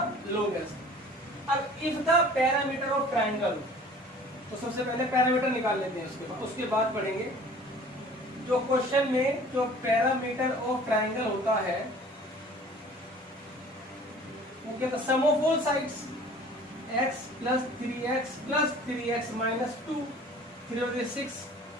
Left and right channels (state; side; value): normal; both; correlation 0.48